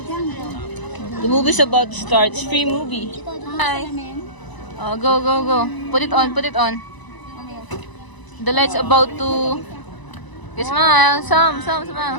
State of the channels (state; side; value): late; right; 1.0 ms